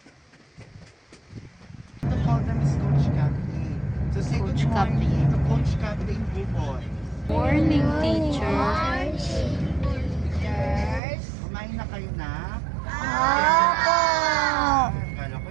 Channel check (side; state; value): left; drops out; at 11.0 s